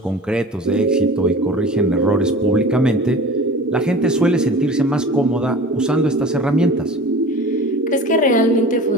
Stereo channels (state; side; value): normal; both; correlation 0.39